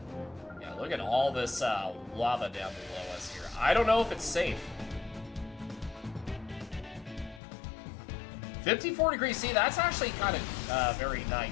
Yeah, look at all this lava down below us here. I don't know if it's safe. 54 degrees. See, that's actually kind of very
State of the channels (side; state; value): right; drops out; at 7.4 s